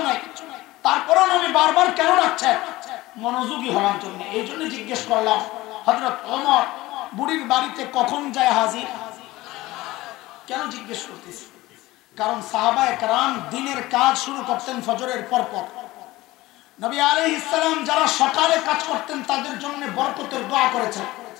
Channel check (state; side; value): quieter; right; 18.5 dB